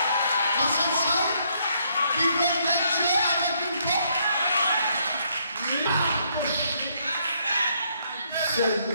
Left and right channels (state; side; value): inverted; both; correlation -0.71